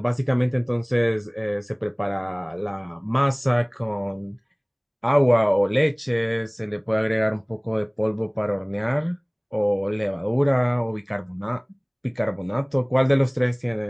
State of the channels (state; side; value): identical; both; correlation 1.00